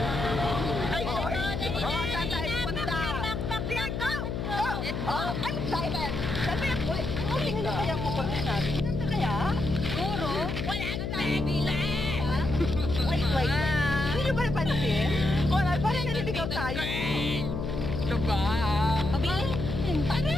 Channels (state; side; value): noise; left; hum, 3 dB below the sound